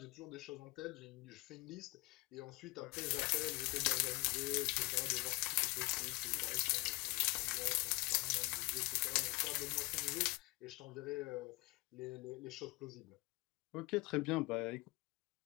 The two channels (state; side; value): quieter; right; 24.9 dB